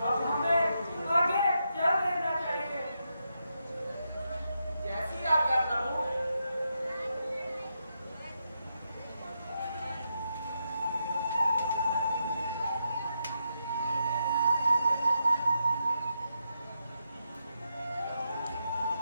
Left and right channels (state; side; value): inverted; both; correlation -0.84